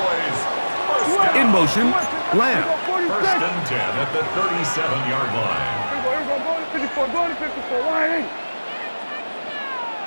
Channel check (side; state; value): both; inverted; correlation -1.00